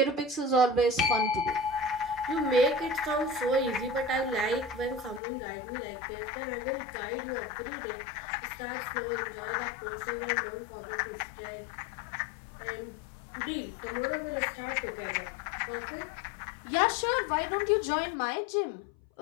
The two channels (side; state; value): right; drops out; at 5.2 s